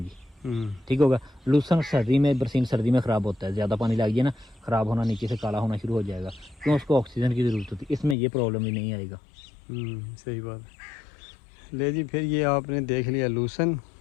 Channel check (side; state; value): right; drops out; at 8.2 s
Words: ठीक होगा। लूसन सर्दी में, बरसीन सर्दी में ख़राब होता है, ज़्यादा पानी लग गया ना ख़राब होना, नीचे से काला होना शुरू हो जाएगा, क्यों उसको ऑक्सीजन की ज़रूरत होती है। इसमें ये प्रॉब्लम ही नहीं आएगा। सही बात है। ले जी, फिर ये आपने देख लिया लूसन